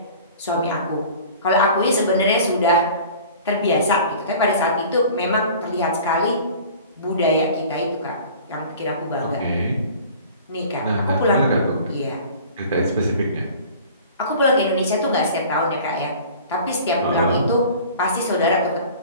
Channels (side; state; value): both; inverted; correlation -0.43